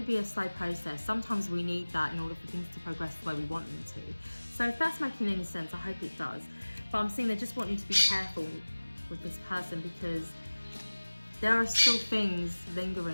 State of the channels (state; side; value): inverted; both; correlation -1.00